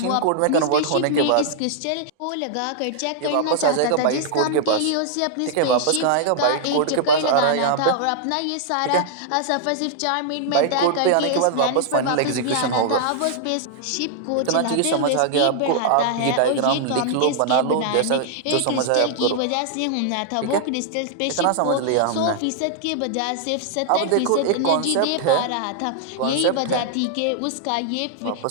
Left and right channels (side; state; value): both; different; correlation -0.01